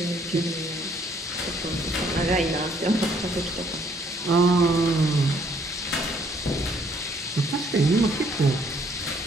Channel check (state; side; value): normal; both; correlation 0.65